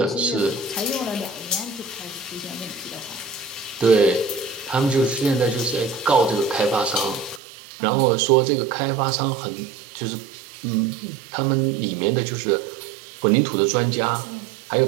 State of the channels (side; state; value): left; drops out; at 7.4 s